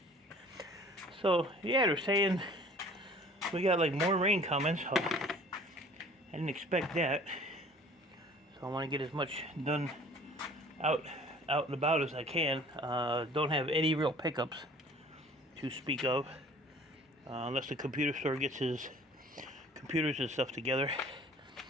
So, yeah, they're saying we got like more rain coming, so I didn't expect that. So I want to get as much done out and about as I can. Don't have any real pickups to speak of, unless the computer store gets his computers and stuff together.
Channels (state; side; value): normal; both; correlation 0.50